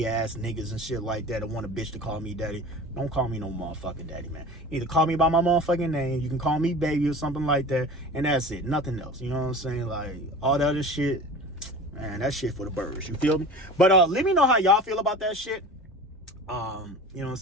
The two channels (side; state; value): both; normal; correlation 0.37